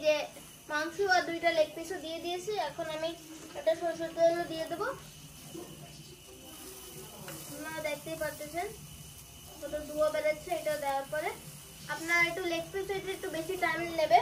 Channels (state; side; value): identical; both; correlation 1.00